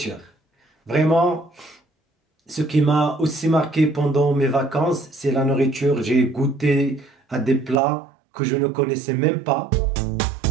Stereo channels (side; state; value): left; drops out; at 7.8 s